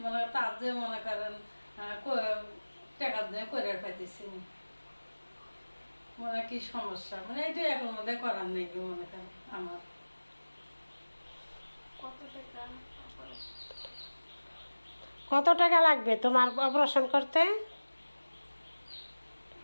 তার যে মনে করেন টাকা দিয়ে করে পাইতেছি, কি সমস্যা, এটা এখন মধ্যে করার নেই কি মনে করেন আমার। কত টাকা লাগবে তোমার অপারেশন করতে?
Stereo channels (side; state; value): both; inverted; correlation -1.00